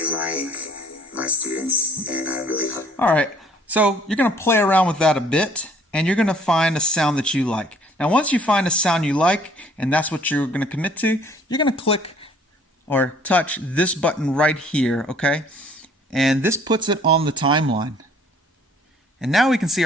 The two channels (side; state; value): both; normal; correlation 0.58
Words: like my students, and I really hope. All right. So you're going to play around with that a bit, and you're going to find a sound that you like. Now, once you find a sound you like, and that's what you're going to commit to, you're going to click or touch this button right here, okay? And this puts it on the timeline. And now we can see